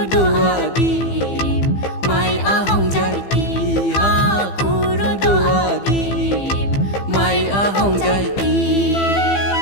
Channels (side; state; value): right; late; 15 ms